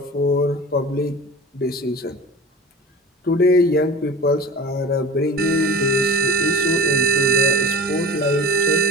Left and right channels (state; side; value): normal; both; correlation 0.37